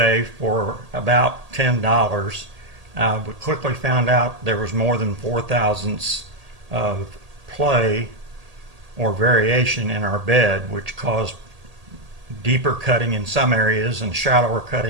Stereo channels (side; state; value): left; late; 1.8 ms